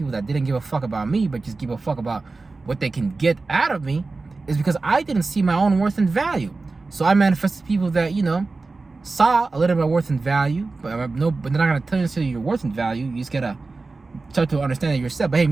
that didn't give a fuck about me, but just give a fuck about what they can get out of me, is because I didn't see my own worth and value. So I manifested people that, saw a little bit of worth and value, but they're not going to tell you your worth and value. You just got to start to understand it yourself. But hey,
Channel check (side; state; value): left; quieter; 3.7 dB